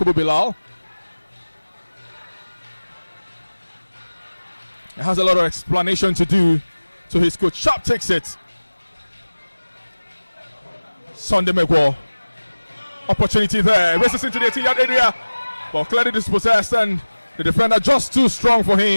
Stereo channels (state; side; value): inverted; both; correlation -1.00